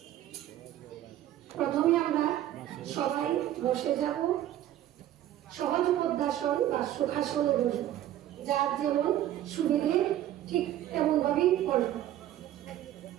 প্রথমে আমরা সবাই বসে যাব, সহজ পদ্মাসন বা সুখাসনে বসব, যার যেমন সুবিধে ঠিক তেমন ভাবেই করব।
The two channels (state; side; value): quieter; left; 12.7 dB